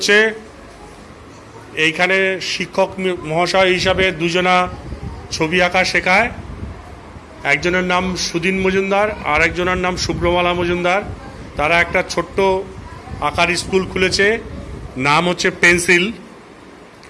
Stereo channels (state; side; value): identical; both; correlation 1.00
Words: এইখানে শিক্ষক মহাশয় হিসাবে দুজনা ছবি আঁকা শেখায়। একজনের নাম সুদিন মজুমদার আর একজনের নাম শুভ্রমালা মজুমদার। তারা একটা ছোট্ট আঁকার স্কুল খুলেছে, নাম হচ্ছে পেন্সিল।